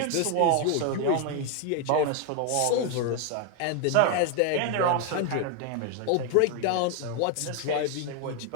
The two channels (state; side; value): different; both; correlation 0.01